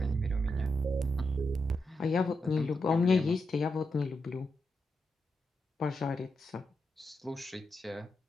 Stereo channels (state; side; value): normal; both; correlation 0.85